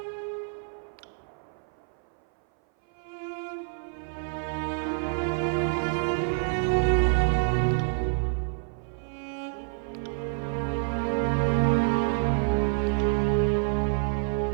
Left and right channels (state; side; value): silent; left; 58 dB below the other